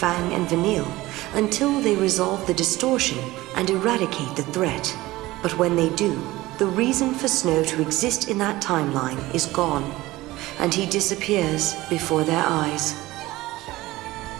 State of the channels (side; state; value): left; quieter; 18.3 dB